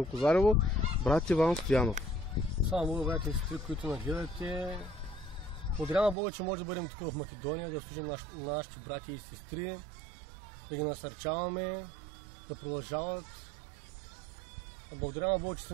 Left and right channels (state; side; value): drops out; left; at 6.2 s